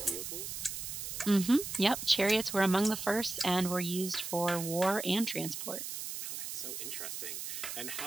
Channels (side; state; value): right; noise; hiss, 6 dB below the sound